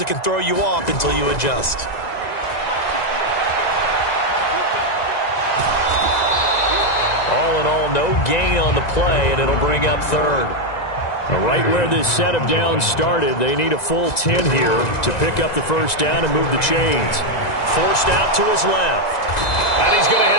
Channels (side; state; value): right; late; 1.9 ms